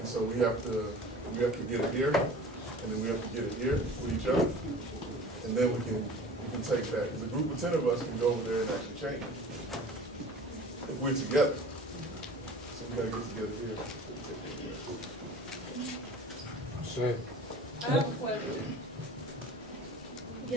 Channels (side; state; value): both; normal; correlation 0.43